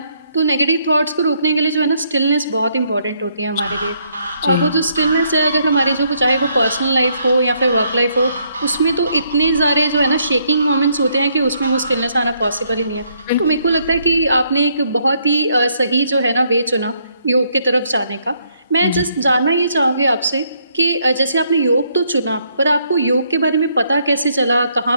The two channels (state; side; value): inverted; both; correlation -0.71